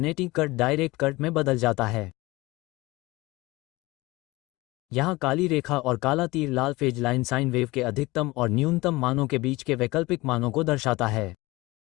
करंट डायरेक्ट करंट में बदल जाता है। यहाँ काली रेखा और काला तीर लाल फेज लाइन साइन वेव के अधिकतम और न्यूनतम मानों के बीच के वैकल्पिक मानों को दर्शाता है।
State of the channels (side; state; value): right; quieter; 21.1 dB